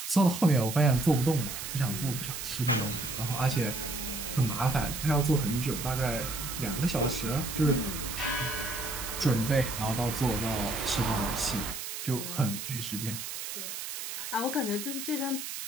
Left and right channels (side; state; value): right; noise; hiss, 6 dB below the sound